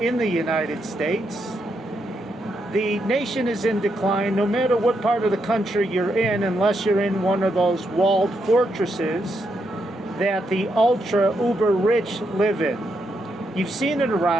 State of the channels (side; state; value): both; normal; correlation 0.81